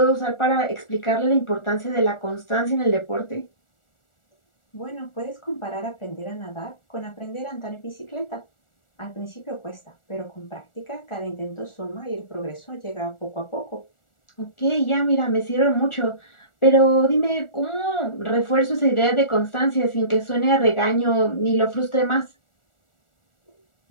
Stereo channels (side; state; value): right; late; 1.4 ms